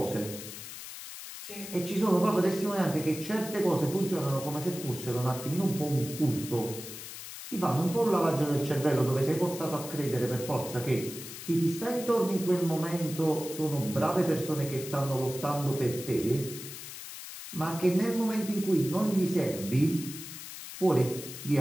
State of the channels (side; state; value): left; noise; hiss, 11 dB below the sound